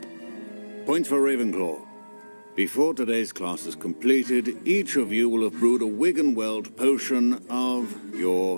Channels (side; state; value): both; inverted; correlation -1.00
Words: Points for Ravenclaw. Before today's class is completed, each of you will have brewed a Wigan-Weld potion of